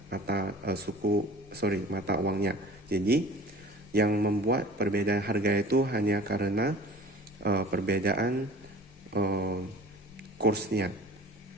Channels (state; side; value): normal; both; correlation 0.44